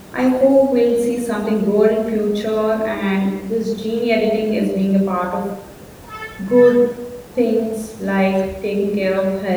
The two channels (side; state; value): both; identical; correlation 1.00